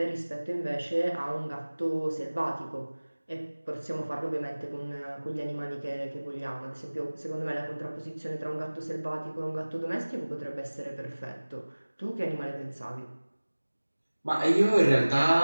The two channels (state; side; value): inverted; both; correlation -1.00